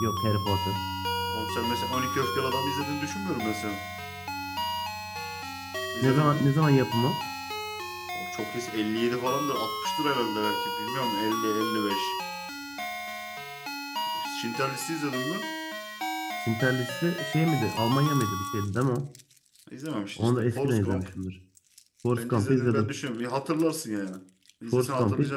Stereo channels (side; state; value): both; identical; correlation 1.00